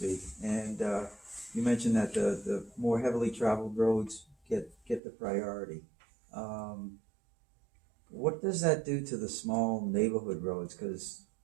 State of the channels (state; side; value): drops out; left; at 5.0 s